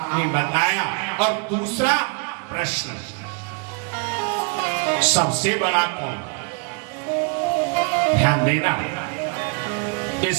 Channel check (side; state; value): left; quieter; 33.3 dB